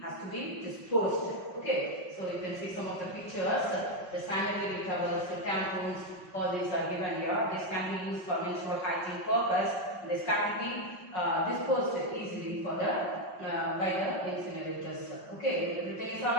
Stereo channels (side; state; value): right; late; 5.4 ms